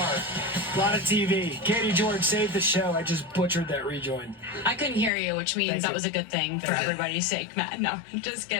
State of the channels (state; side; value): drops out; right; at 5.1 s